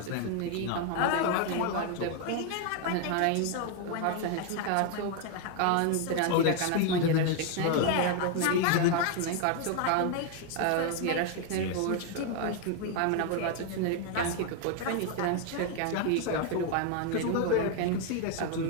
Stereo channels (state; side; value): different; both; correlation 0.01